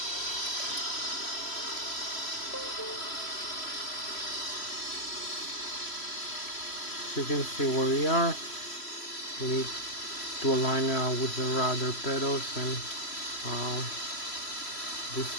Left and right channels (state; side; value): late; right; 3.0 ms